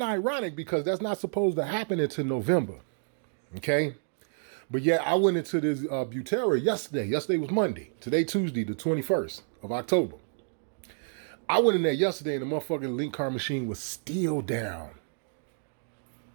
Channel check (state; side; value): silent; left; digital silence